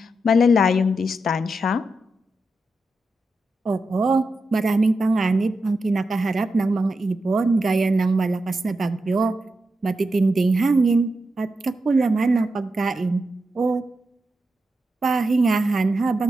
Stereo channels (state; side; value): normal; both; correlation 0.87